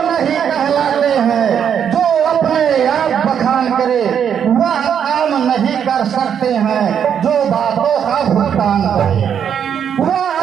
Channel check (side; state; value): left; quieter; 8.2 dB